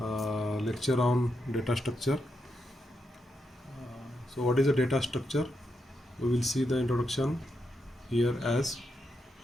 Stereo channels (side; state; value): both; normal; correlation 0.83